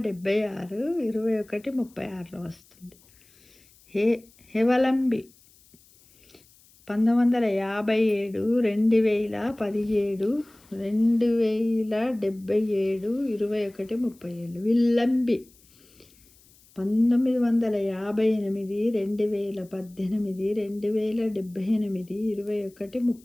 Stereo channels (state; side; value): noise; left; hiss, 29 dB below the sound